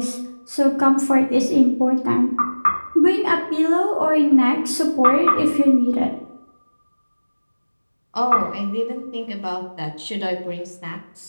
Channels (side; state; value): both; inverted; correlation -1.00